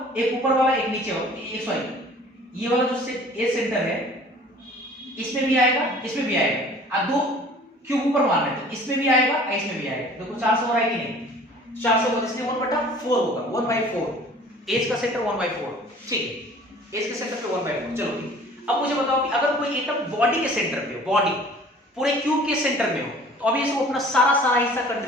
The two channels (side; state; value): both; normal; correlation 0.49